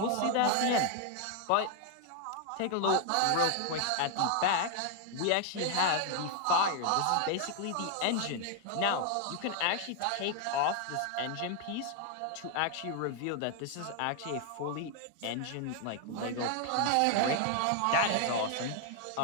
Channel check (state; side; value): different; both; correlation 0.00